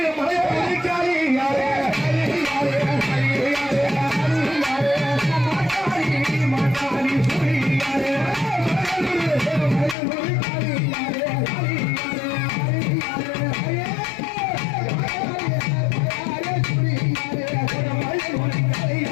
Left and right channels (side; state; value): right; drops out; at 10.0 s